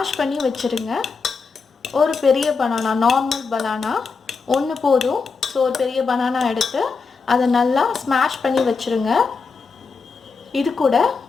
பண்ணி வச்சுருங்க. ஒரு பெரிய பனானா, நார்மல் பனானா ஒன்று போதும். ஸோ ஒரு பெரிய பனானா எடுத்து அதை நல்லா ஸ்மாஷ் பண்ணி வச்சுருங்க. இது கூட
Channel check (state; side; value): quieter; right; 4.9 dB